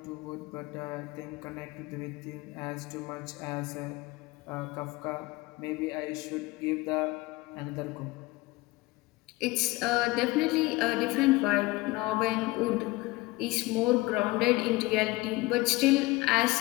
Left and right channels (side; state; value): right; quieter; 21.1 dB